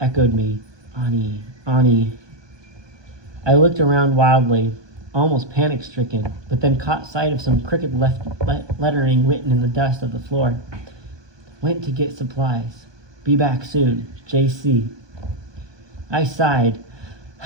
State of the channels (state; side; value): late; left; 1.2 ms